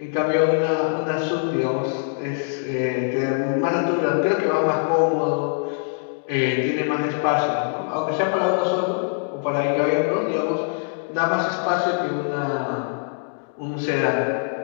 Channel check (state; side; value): silent; right; digital silence